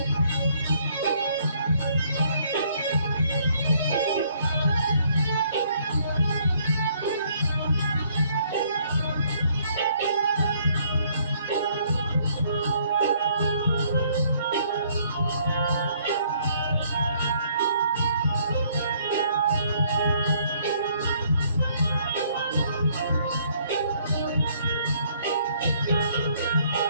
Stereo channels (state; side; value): inverted; both; correlation -0.65